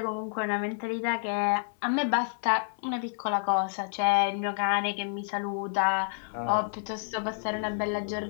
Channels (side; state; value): right; silent; 58 dB below the other